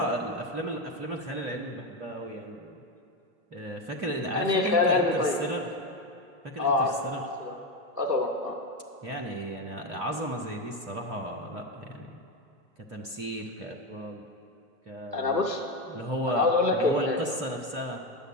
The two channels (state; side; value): late; left; 2.8 ms